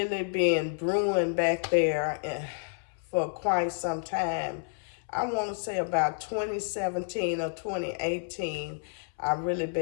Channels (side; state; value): right; silent; 58 dB below the other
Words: been brewing back there for quite some time. I want to say about 2017 or 2018, I've really